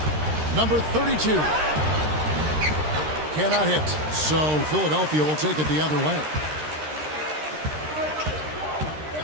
Number 32. Cannot hit, so Philadelphia will take it the other way.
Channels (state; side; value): late; left; 13 ms